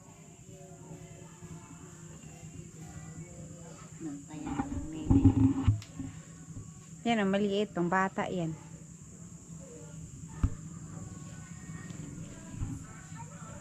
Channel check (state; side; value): identical; both; correlation 1.00